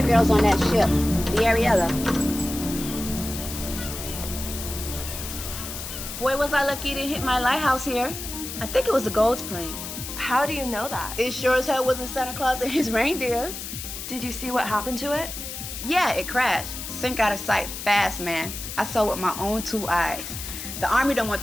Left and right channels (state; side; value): noise; left; hiss, 8 dB below the sound